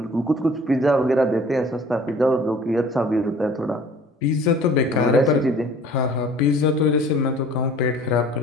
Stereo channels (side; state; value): both; normal; correlation 0.50